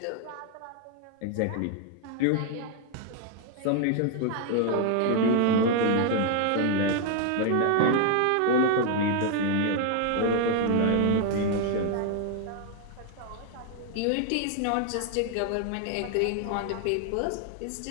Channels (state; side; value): different; both; correlation 0.00